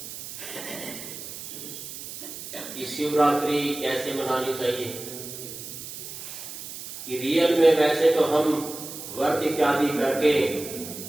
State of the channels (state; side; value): noise; right; hiss, 10 dB below the sound